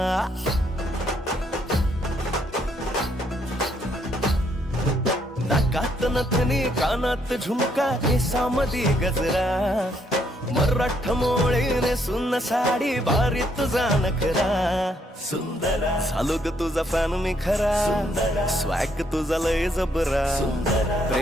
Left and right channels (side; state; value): both; normal; correlation 0.72